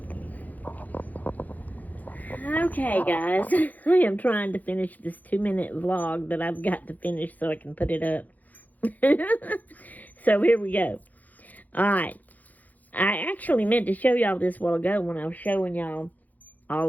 Okay, guys, I am trying to finish this 2-minute vlog that I've got to finish so I can put it up. So here we go. Alright, I actually meant to show y'all this a while ago when I was showing y'all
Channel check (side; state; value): right; late; 0.080 ms